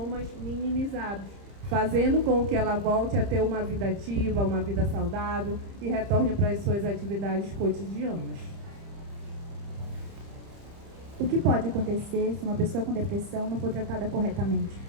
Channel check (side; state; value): left; late; 30 ms